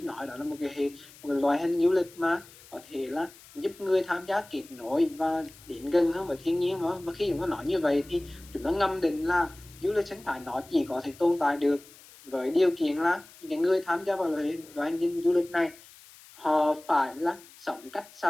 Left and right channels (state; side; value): noise; left; hiss, 22 dB below the sound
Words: đó là một cái loại hình du lịch mà có thể là giúp người tham gia kết nối và đến gần hơn với thiên nhiên đó. Và khi chúng ta nói như vậy thì chúng ta ngầm định là du lịch sinh thái nó chỉ có thể tồn tại được với điều kiện là những người tham gia vào loại hình du lịch này họ phải là sống cách